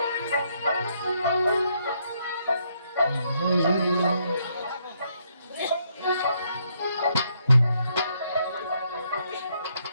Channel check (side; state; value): both; inverted; correlation -0.73